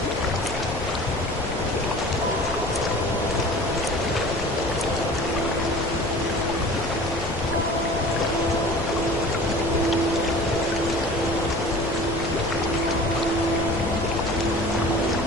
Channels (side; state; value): left; noise; rumble, 8 dB below the sound